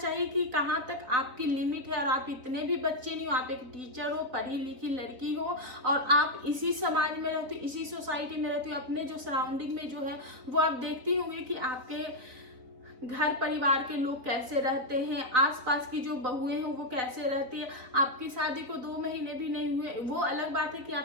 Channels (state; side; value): late; left; 4.0 ms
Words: कि कहाँ तक आपकी लिमिट है, और आप इतने भी बच्चे नहीं हो, आप एक टीचर हो, पढ़ी लिखी लड़की हो, और आप इसी समाज में रहती हो, इसी सोसाइटी में रहती हो, अपने जो सराउंडिंग में जो है वो आप देखती होंगे कि आपके घर परिवार के लोग कैसे रहते हैं, आसपास की जो बहुएं हैं वो कैसे रहती है। आपकी शादी को 2 महीने भी नहीं हुए, वो अलग बात है कि